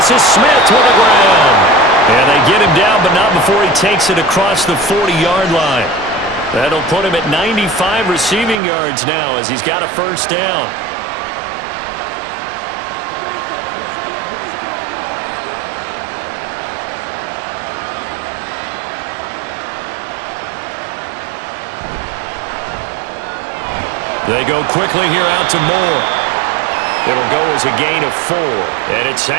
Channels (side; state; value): left; drops out; at 8.6 s